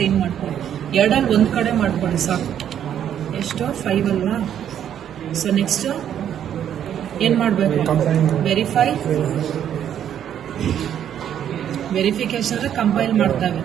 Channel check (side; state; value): left; quieter; 9.8 dB